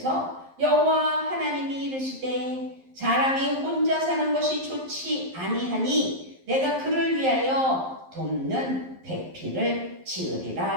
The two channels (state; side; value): late; left; 11 ms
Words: 여호와 하나님이 이르시되 사람이 혼자 사는 것이 좋지 아니하니 내가 그를 위하여 돕는 배필을